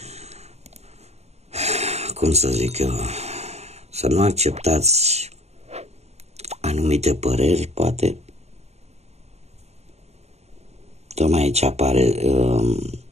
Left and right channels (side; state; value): left; late; 0.31 ms